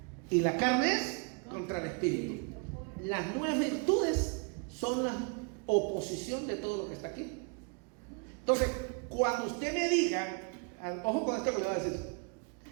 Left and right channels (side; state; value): left; quieter; 35.5 dB